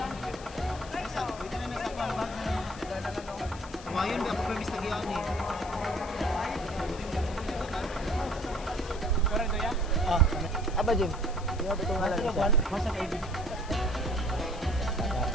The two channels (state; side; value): noise; left; hiss, 18 dB below the sound